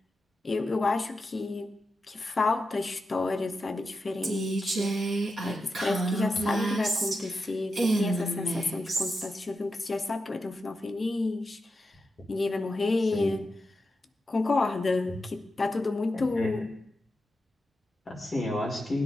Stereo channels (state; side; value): normal; both; correlation 0.89